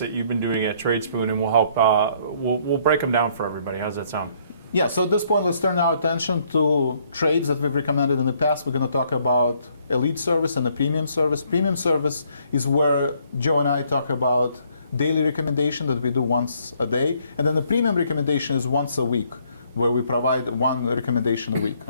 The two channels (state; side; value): inverted; both; correlation -0.67